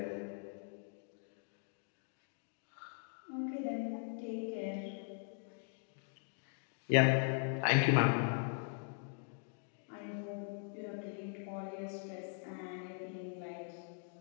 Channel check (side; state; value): right; silent; 51 dB below the other